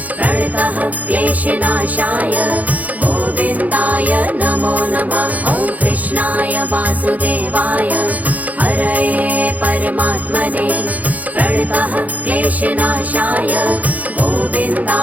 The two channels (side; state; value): left; late; 0.078 ms